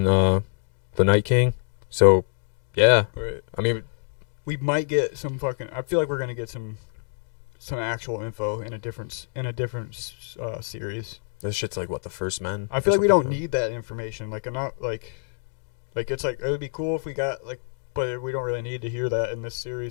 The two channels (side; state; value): right; silent; digital silence